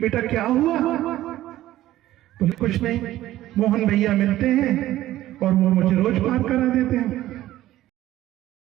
क्या हुआ? बोले कुछ नहीं, मोहन भैया मिलते हैं और वो मुझे रोज पार करा देते हैं।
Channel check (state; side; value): quieter; left; 14.6 dB